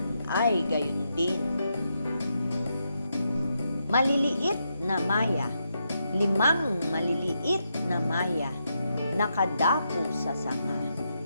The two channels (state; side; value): inverted; both; correlation -0.82